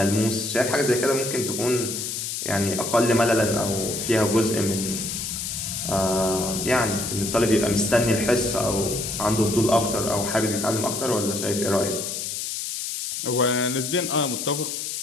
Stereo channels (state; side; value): noise; left; hiss, 4 dB below the sound